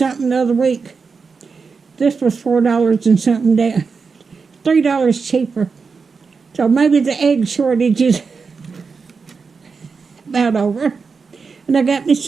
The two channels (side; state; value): left; quieter; 5.1 dB